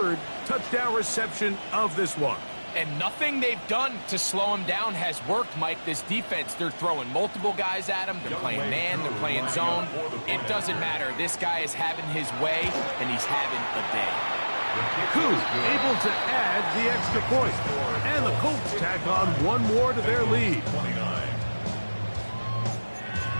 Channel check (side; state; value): both; inverted; correlation -1.00